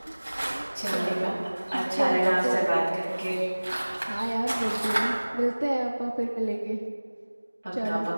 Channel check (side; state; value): both; inverted; correlation -1.00